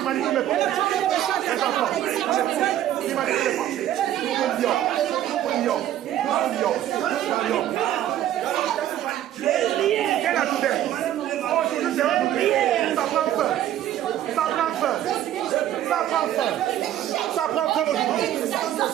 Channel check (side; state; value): left; quieter; 12.1 dB